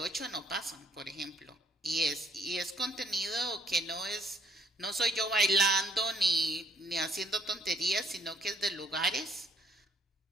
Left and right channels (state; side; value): normal; both; correlation 0.66